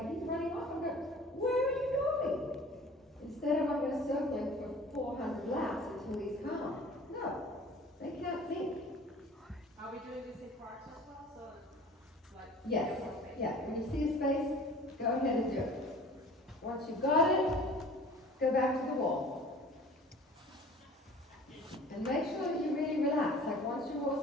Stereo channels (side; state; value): both; normal; correlation 0.45